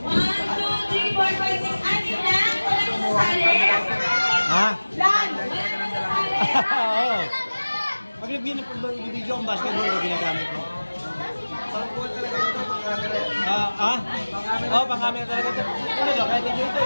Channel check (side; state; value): both; inverted; correlation -1.00